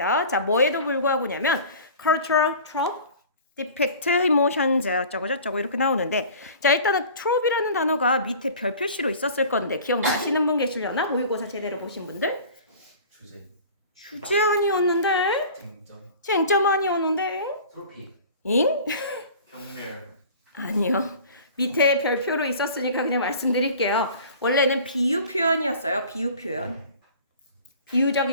자, 뭐에도 불구하고냐면, cultural trope, depict emotions, 어쩌고 저쩌고 이렇게 나오는데, 자, 일단은 trope이라는 단어가 밑에 별 표시로 있었을 건데, 기억나시는 분 계시려나? 모의고사 제대로 보신 분들? 주제 아니었는데? 쟁점 아니었는데? 트로피 잉? 경멸 아니요. 밑에 별표로 있었으니까 그냥 말씀드릴게요. 원래는 비유 표현이었어요. 비유 표현.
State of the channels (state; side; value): inverted; both; correlation -0.43